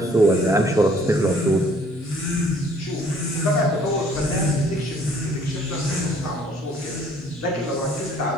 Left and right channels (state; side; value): normal; both; correlation 0.59